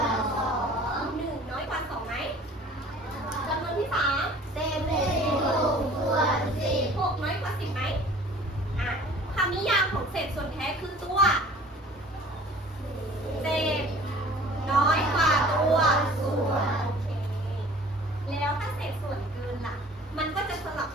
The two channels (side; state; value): both; normal; correlation 0.48